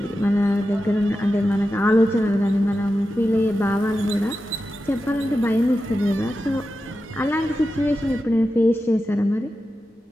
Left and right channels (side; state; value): both; normal; correlation 0.91